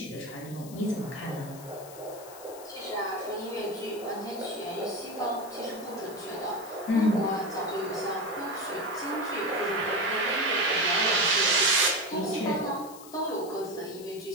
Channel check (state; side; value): noise; left; hiss, 17 dB below the sound